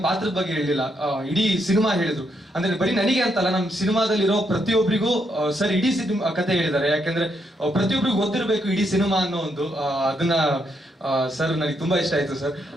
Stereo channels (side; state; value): both; normal; correlation 0.77